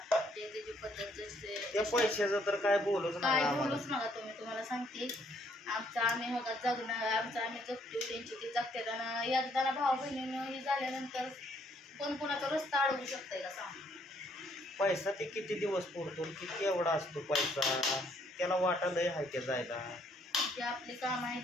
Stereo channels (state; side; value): normal; both; correlation 0.68